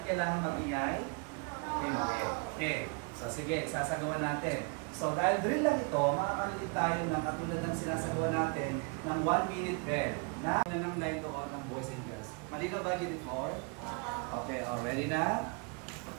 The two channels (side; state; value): left; quieter; 33.4 dB